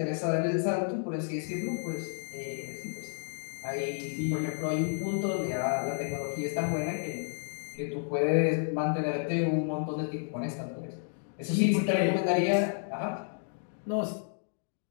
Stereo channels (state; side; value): silent; right; digital silence